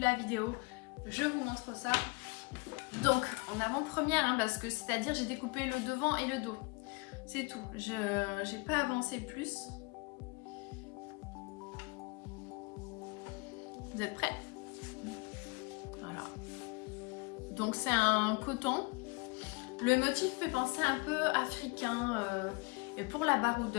la vidéo, je vous montre ça. Donc en avant-première, hein, parce que c'est-à-dire j'ai découpé le devant et le dos. C'est tout, j'ai pas avancé plus. Vous êtes prêts? Voilà. Donc c'est un coton. Le motif fait penser un peu africain. Et pour la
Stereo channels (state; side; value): quieter; right; 28.6 dB